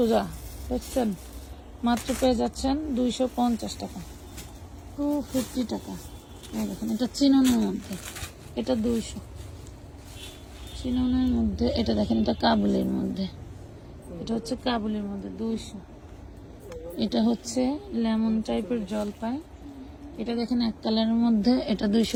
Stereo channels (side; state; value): both; identical; correlation 1.00